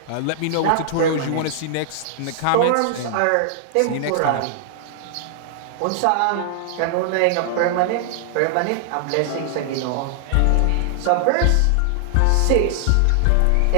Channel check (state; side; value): different; both; correlation -0.01